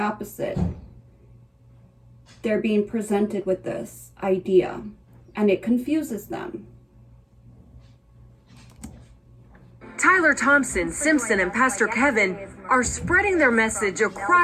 they're being presented with this idea and it confuses them. Tyler Thompson, Simpson, and Pastor Kevin are spreading their message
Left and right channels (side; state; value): both; identical; correlation 1.00